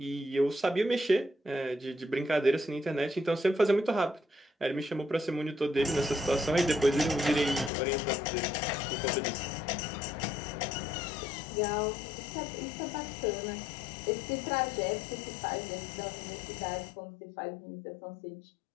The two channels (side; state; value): right; drops out; at 7.7 s